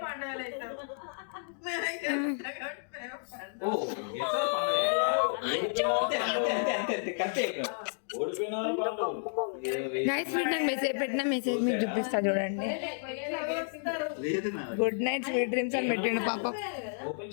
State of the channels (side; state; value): right; silent; digital silence